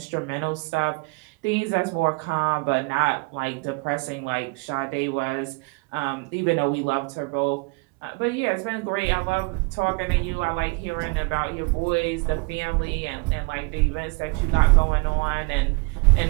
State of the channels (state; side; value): quieter; left; 29.6 dB